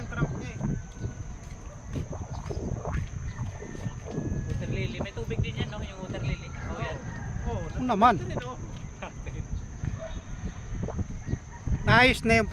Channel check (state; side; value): identical; both; correlation 1.00